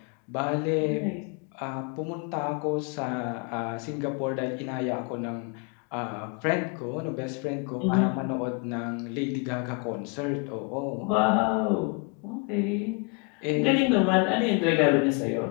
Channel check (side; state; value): right; quieter; 31.6 dB